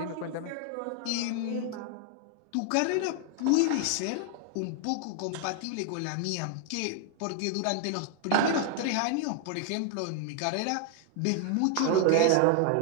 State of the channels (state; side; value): different; both; correlation 0.00